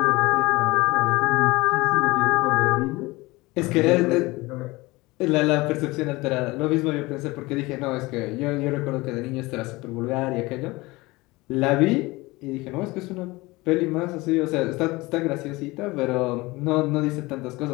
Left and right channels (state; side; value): quieter; right; 21.9 dB